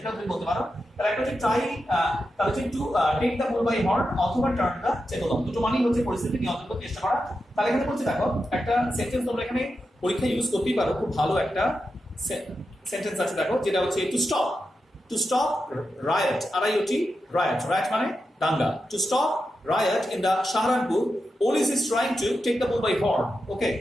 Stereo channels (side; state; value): both; normal; correlation 0.89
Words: এটা তুমি বলতে পারো। তাহলে একটা হচ্ছে try, তাহলে হচ্ছে to take the bull by horn অথবা turn the table on, দুটো মানেই হচ্ছে পরিস্থিতি নিয়ন্ত্রণ করতে চেষ্টা করা। তাহলে এখানে বলছে দেখো একটা সেন্টেন্স তোমরা এখানে পরীক্ষা ইউজ করতেই পারো, খুব ভালো একটা সেন্টেন্স আছে দেখো, যেটা হচ্ছে to stop riot, RIOT, riot মানে দাঙ্গা, to stop riot in the Saharanpur, police is trying to take the bull by horn। ওকে,